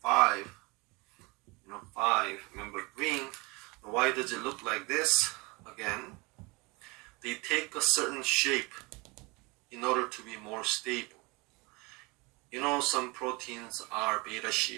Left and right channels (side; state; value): left; quieter; 26.3 dB